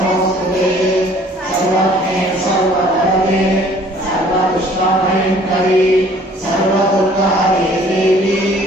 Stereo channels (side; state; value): both; normal; correlation 0.55